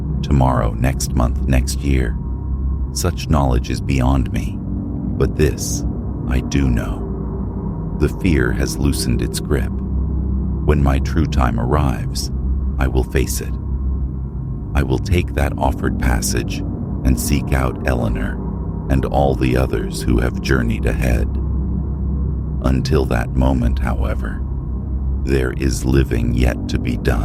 Tomorrow, next month, next year. Such knowledge is beyond me. But this, I do know. The fear has loosened its grip. When my true time arrives, I will face it. I will take that offered passage and seek out Eleanor and all the others who have journeyed ahead. Until that moment, however, there is living yet to be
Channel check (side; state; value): both; identical; correlation 1.00